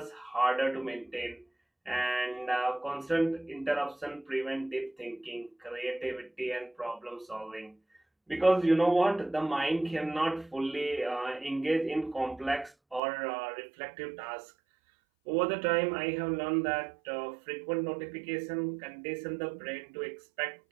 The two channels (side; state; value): left; drops out; at 13.0 s